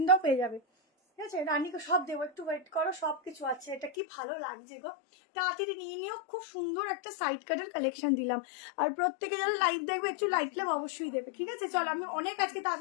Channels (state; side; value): drops out; right; at 3.9 s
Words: দাও, পেয়ে যাবে, ঠিক আছে। রানীকে সব দেবো, একটু ওয়েট করো, সব কিছু আছে। এটা কি ভালো লাগছে গো, তাড়াতাড়ি নিয়ে নিও। খুব সুন্দর একটা সাইড কাটের কালেকশন দিলাম। আর প্রত্যেকে যারা লাইভ দেখবে একটু লাইক লাভ অবশ্যই দেবে, ঠিক আছে। চলো আমি অনেক আজকে